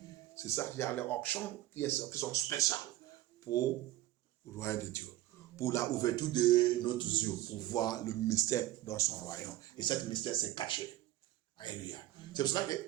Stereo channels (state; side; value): quieter; left; 15.2 dB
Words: C'est ça, il y a les auctions qui sont spéciales pour le royaume de Dieu. Pour la ouverture de notre yeux, pour voir le mystère dans son royaume. Et cet mystère s'est caché. Alléluia. C'est pour cela